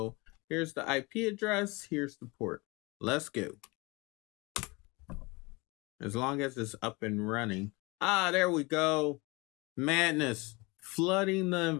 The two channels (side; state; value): right; quieter; 25.7 dB